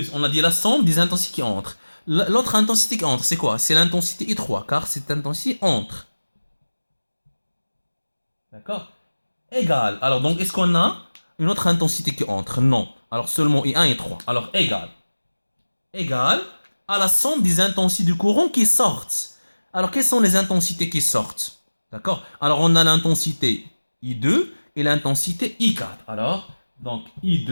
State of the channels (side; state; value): both; inverted; correlation -1.00